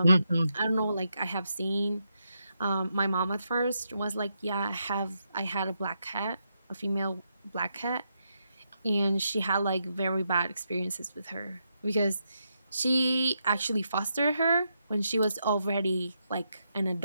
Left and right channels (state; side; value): inverted; both; correlation -0.82